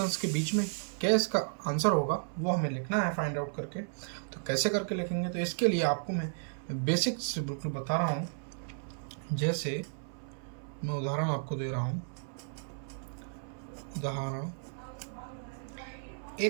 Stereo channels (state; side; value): silent; left; 55 dB below the other